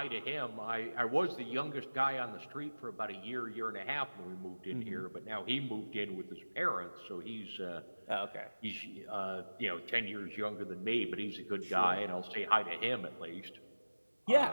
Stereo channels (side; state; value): both; inverted; correlation -1.00